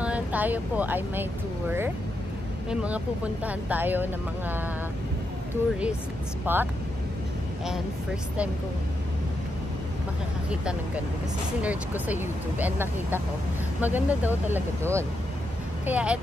tayo po ay may tour. May mga pupuntahan tayo ng mga tourist spot. And first time kong makakakita ng ganun. Kasi sinerge ko sa YouTube and nakita ko, maganda daw talaga doon. Kaya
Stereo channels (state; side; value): normal; both; correlation 0.84